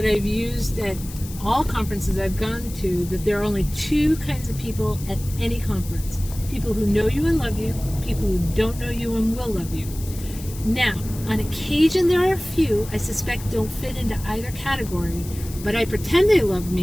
I've used at all conferences I've gone to, that there are only two kinds of people at any conference. People who know you and love you, people who don't know you and will love you. Now, on occasion there are a few I suspect don't fit into either category, but I pretend they love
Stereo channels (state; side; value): noise; left; hiss, 15 dB below the sound